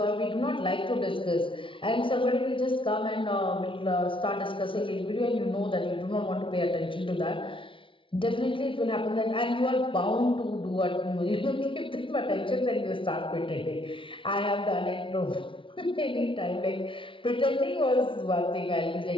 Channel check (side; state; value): right; late; 0.25 ms